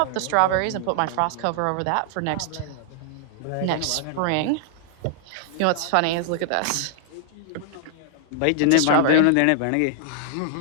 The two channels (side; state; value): both; different; correlation -0.01